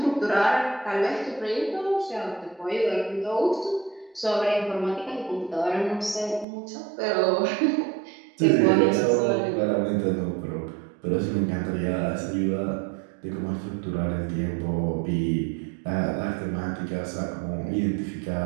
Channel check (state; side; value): drops out; left; at 6.5 s